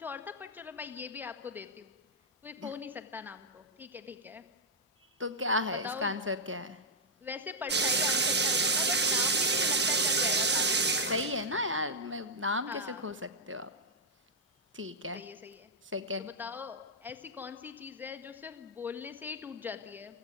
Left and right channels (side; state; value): both; normal; correlation -0.04